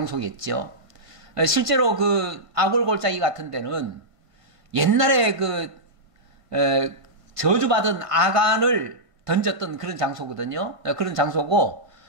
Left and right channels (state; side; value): late; left; 1.5 ms